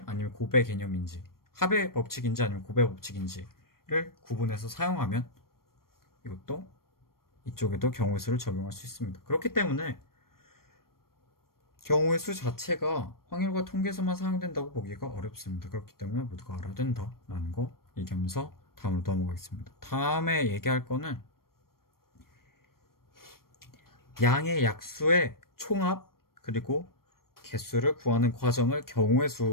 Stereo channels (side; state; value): right; late; 0.93 ms